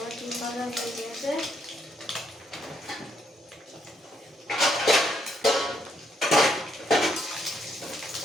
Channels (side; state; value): both; normal; correlation 0.74